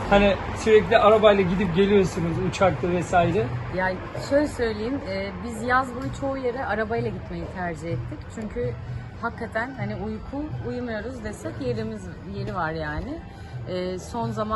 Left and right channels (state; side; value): identical; both; correlation 1.00